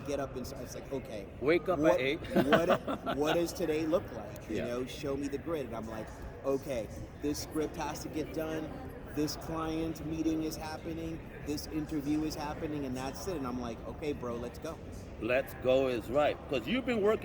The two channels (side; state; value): both; identical; correlation 1.00